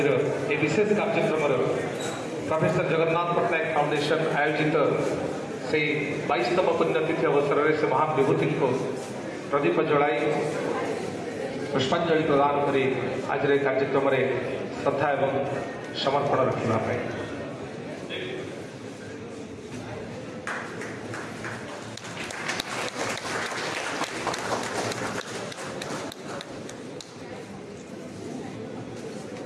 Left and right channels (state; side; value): identical; both; correlation 1.00